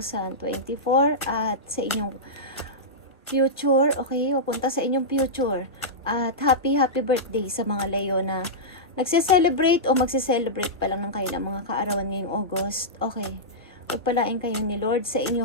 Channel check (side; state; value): both; normal; correlation -0.13